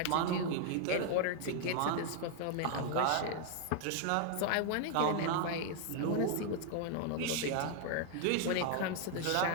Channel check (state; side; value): different; both; correlation 0.00